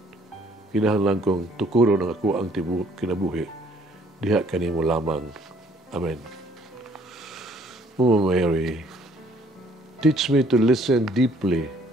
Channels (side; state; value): both; normal; correlation 0.61